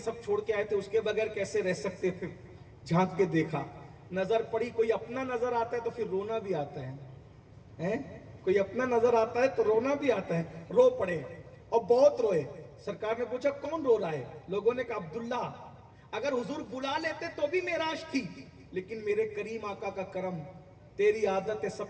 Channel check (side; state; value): both; identical; correlation 1.00